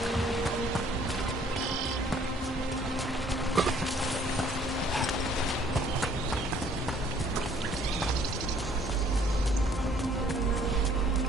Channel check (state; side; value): normal; both; correlation 0.61